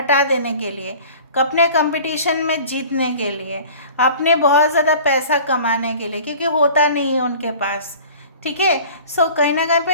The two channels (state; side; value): inverted; both; correlation -0.44